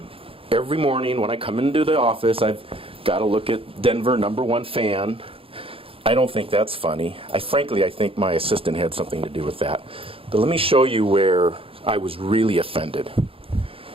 every morning when I come into the office, I've got to look at Denver #1 fan. I don't think that's funny. Frankly, I think my assistant had something to do with that. But let me show you where I was really offended.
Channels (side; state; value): left; late; 0.27 ms